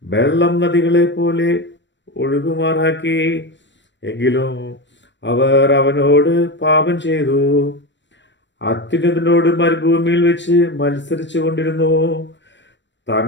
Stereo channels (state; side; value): late; right; 0.53 ms